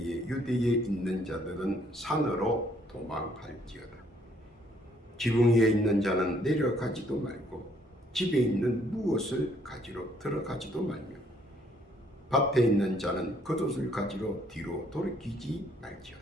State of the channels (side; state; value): both; normal; correlation 0.66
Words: 유대에 있는 자들은 산으로 도망할지어다. 지붕 위에 있는 자는 내려가지도 말고 집에 있는 무엇을 가지러 들어가지도 말며 밭에 있는 자는 겉옷을 가지러 뒤로 돌이키지